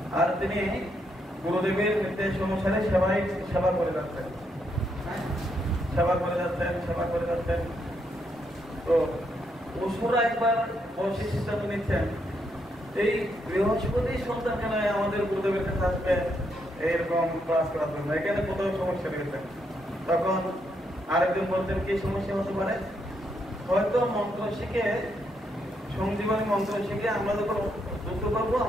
আর তিনি গুরুদেবের নির্দেশ অনুসারে সেবা করে যাচ্ছেন, সেবা করে যাচ্ছেন। তো অসুরা একবার বসে সিদ্ধান্ত নিচ্ছেন এই বৃহস্পতি সন্তান কেন আমাদের গুরুদেবের কাছে আসবে এইরকম ক্লাস করার জন্য, এখানে কোথাও সমস্যা রয়েছে। তখন আরেকজন বলতেন কি সমস্যা হতে পারে, হয়তো মন্ত্র শিখে, সঞ্জীবনী মন্ত্র শিখে আমরা যখন যুদ্ধ করবো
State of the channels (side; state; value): both; normal; correlation 0.78